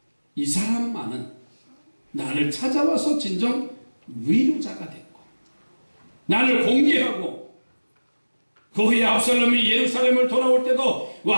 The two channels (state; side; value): inverted; both; correlation -1.00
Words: 이 사람만은 나를 찾아와서 진정 위로자가 됐고 나를 공개하고 그 후에 압살롬이 예루살렘을 돌아올 때도